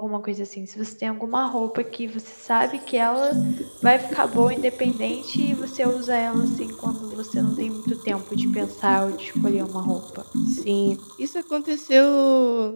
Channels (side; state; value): both; inverted; correlation -1.00